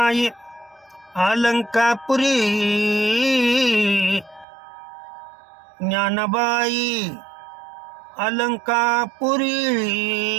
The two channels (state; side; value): drops out; left; at 4.5 s